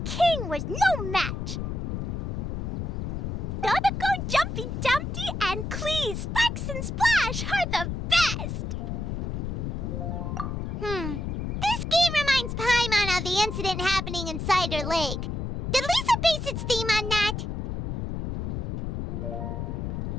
king was no match. Dodoko, Jumpy Dumpty, and Clee, Sparks and Splash are the best! This game reminds Paimon of the incident happening in Cider Lake. Did Lisa base its theme on that?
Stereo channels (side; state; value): left; noise; rumble, 3 dB below the sound